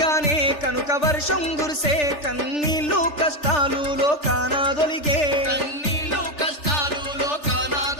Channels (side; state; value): right; late; 3.4 ms